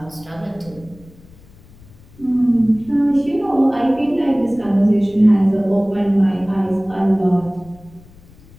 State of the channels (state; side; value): noise; left; rumble, 24 dB below the sound